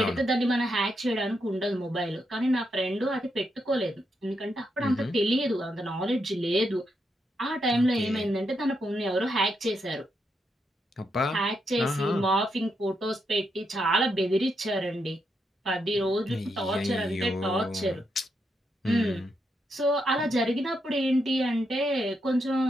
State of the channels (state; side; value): normal; both; correlation 0.81